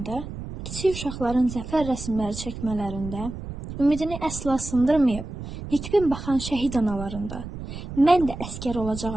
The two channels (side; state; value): right; noise; rumble, 9 dB below the sound